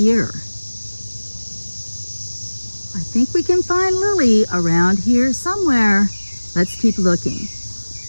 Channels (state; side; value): inverted; both; correlation -1.00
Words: I think we can find Lily around here somewhere. Let's keep looking.